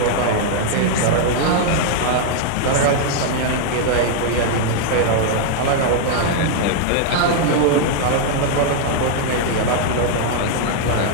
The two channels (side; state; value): both; different; correlation 0.00